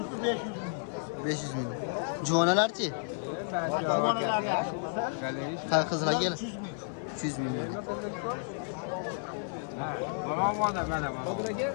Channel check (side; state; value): right; silent; 55 dB below the other